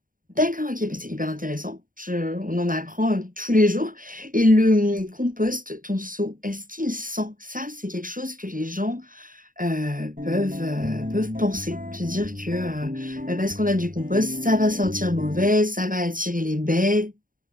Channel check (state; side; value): late; left; 0.40 ms